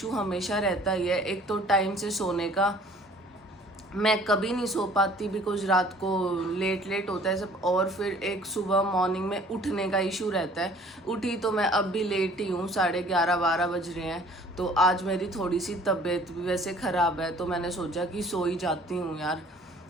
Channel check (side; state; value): both; normal; correlation 0.53